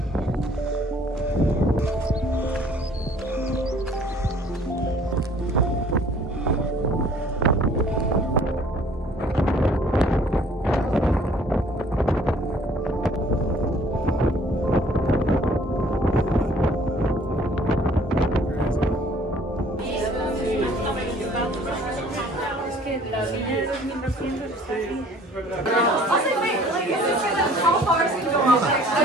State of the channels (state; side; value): normal; both; correlation 0.55